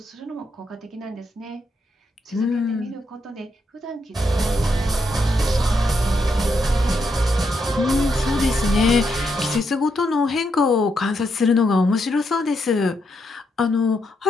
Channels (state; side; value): normal; both; correlation 0.80